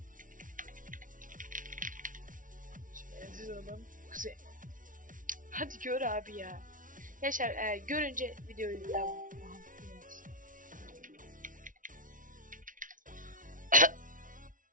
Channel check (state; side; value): late; left; 0.38 ms